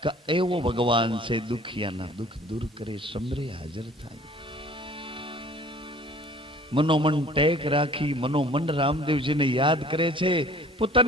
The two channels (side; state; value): both; normal; correlation 0.50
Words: કે એવો ભગવાન છે દુખિયાના દુઃખ દૂર કરે, સમરે હાજર થાય. મનોમન ટેક રાખી મનોમન રામદેવજીને યાદ કરે છે.